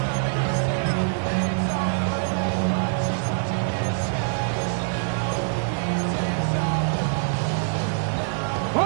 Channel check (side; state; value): left; silent; digital silence